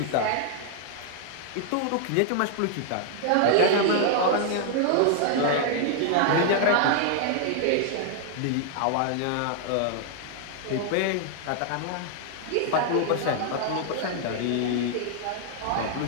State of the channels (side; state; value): both; different; correlation 0.00